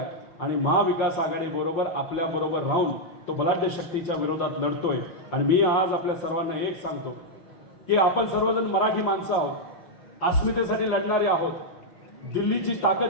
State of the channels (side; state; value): right; late; 5.7 ms